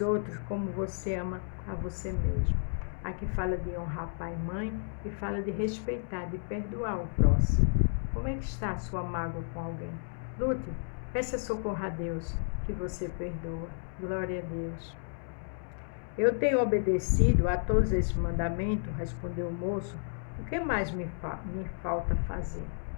outros como você ama a você mesmo. Aqui fala de honrar pai e mãe e fala de respeitar, de perdoar o próximo. Como é que está a sua mágoa com alguém? Lute, peça socorro a Deus que você perdoa. Glória a Deus. Eu tenho obedecido a todos esses mandamentos, respondeu o moço. O que mais me falta fazer?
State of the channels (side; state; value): right; silent; digital silence